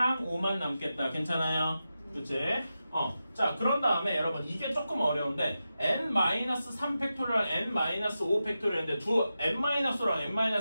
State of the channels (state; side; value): inverted; both; correlation -0.91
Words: 5만 남겠다. 괜찮아요? 그치? 자, 그런 다음에 여러분 이게 조금 어려운데 n-3 팩토리얼, n-5 팩토리얼인데 두 n-랑